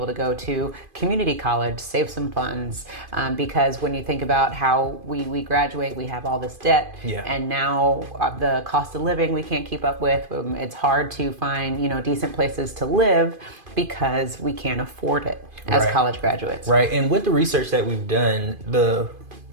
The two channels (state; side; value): late; left; 2.5 ms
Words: to go to community college, save some funds, because when you think about how we graduate, we have all this debt, and now the cost of living we can't keep up with. It's hard to find, decent places to live because we can't afford it as college graduates. Right. And with the research that we've done, the